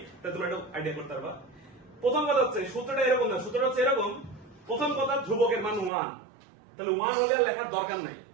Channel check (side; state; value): left; drops out; at 5.9 s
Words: তাহলে তোমরা একটু আইডিয়া করতে পারবা। প্রথম কথা হচ্ছে সূত্রটা এরকম না, সূত্রটা হচ্ছে এরকম। প্রথম কথা, ধ্রুবকের মান 1, তাহলে 1 হলে আর লেখার দরকার নাই,